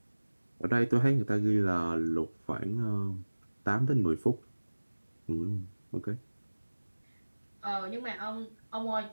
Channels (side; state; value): both; inverted; correlation -1.00